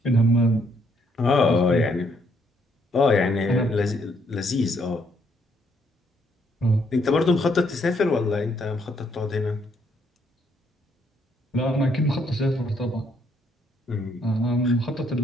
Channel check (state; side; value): normal; both; correlation 0.71